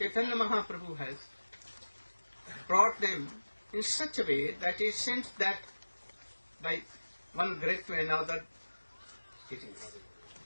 Mahaprabhu has brought them in such a way that it seems that by one grade to another it is.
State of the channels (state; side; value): inverted; both; correlation -1.00